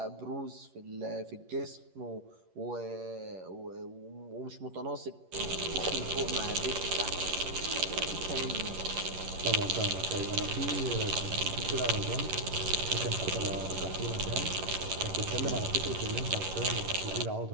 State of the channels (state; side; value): late; left; 11 ms